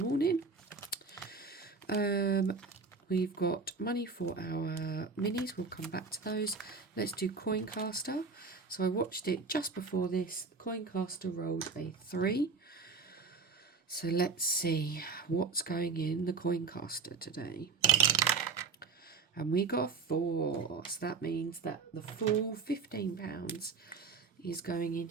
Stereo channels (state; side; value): quieter; left; 4.6 dB